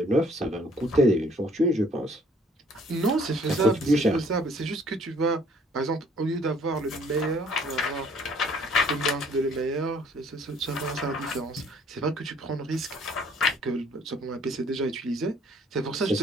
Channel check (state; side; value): normal; both; correlation 0.59